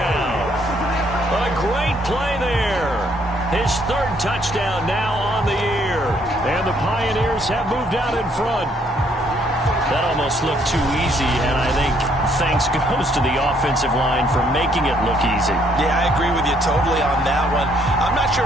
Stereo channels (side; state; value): both; normal; correlation 0.68